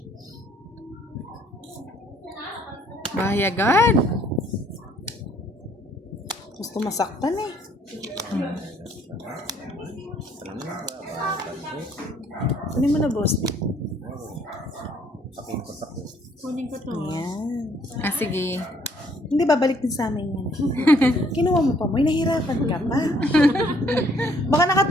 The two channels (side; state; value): both; normal; correlation 0.63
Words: Bahayagan. Gusto masaktan eh. Kunin mo na, boss. Kunin ko to. Ayan. Ah, sige. Hindi, babalik din sa amin yan. Kinuha mo pa mo, nahihirapan ka pa. Baka